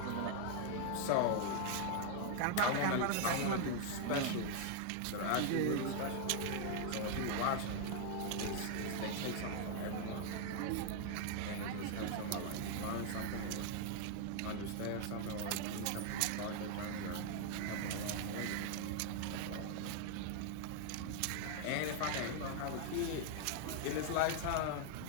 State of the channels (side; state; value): both; different; correlation 0.00